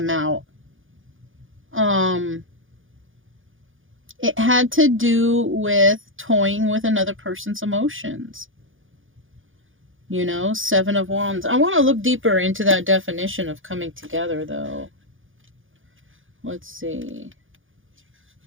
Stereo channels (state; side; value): late; left; 0.58 ms